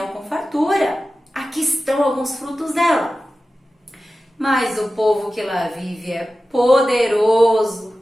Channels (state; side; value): normal; both; correlation 0.94